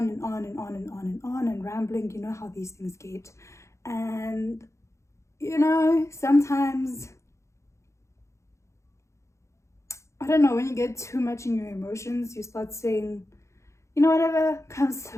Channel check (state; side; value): late; right; 0.14 ms